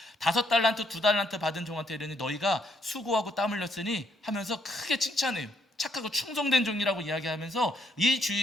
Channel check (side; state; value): both; normal; correlation 0.72